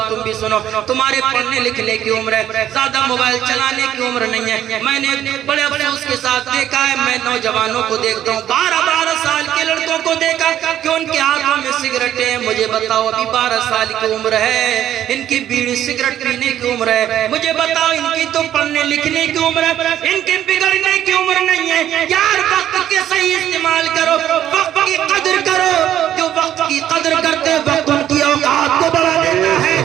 تم بھی سنو، تمہارے پڑھنے لکھنے کی عمر ہے، زیادہ موبائل چلانے کی عمر نہیں ہے۔ میں نے بڑے افسوس کے ساتھ دیکھا ہے، میں نوجوانوں کو دیکھتا ہوں، 12 سال کے لڑکوں کو دیکھا کہ ان کے ہاتھوں میں سگریٹیں ہیں۔ مجھے بتاؤ، ابھی 12 سال کی عمر ہے، ان کی بیڑی سگریٹ پینے کی عمر ہے، مجھے بتاؤ ان کی تو پڑھنے لکھنے کی عمر ہے، ان کی بگڑنے کی عمر نہیں ہے۔ یار وقت کے صحیح استعمال کرو، وقت کی قدر کرو۔ جو وقت کی قدر کرتے وقت ان کی اوقات کو بڑھا دیتا ہے،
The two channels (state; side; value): quieter; left; 11.3 dB